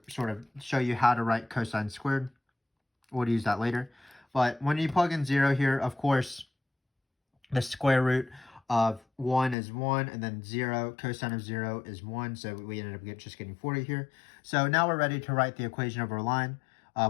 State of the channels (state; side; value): drops out; right; at 9.6 s